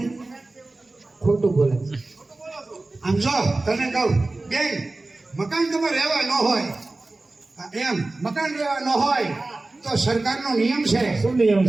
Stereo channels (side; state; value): left; quieter; 3.1 dB